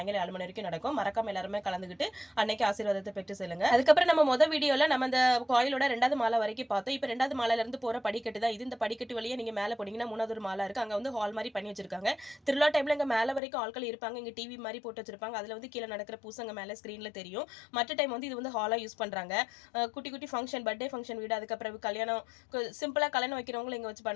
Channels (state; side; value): drops out; right; at 13.4 s